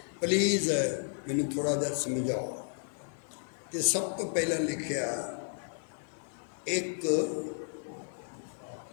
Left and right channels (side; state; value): right; silent; digital silence